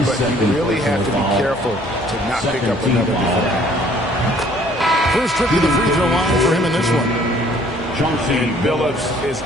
but you really have to be careful to not pick up another defender. First trip to the free throw line for him in this one. And Billups is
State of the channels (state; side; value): normal; both; correlation 0.58